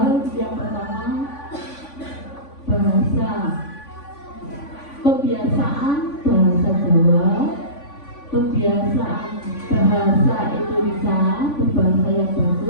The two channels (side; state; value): right; late; 3.5 ms